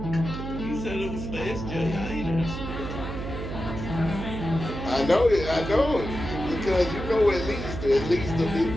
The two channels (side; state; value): right; noise; hum, 6 dB below the sound